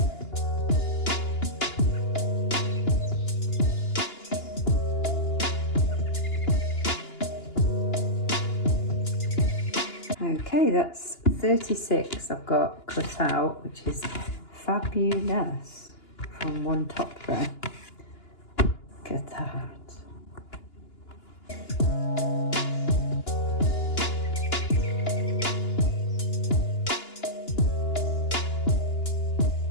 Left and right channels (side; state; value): right; late; 2.9 ms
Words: Okay, that's 36 I've got cut out, which is fabulous from one top there. Look at that.